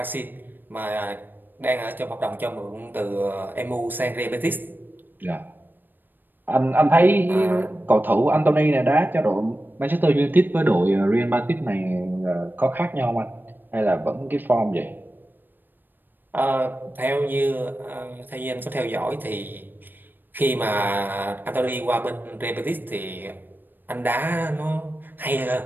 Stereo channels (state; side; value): late; left; 0.092 ms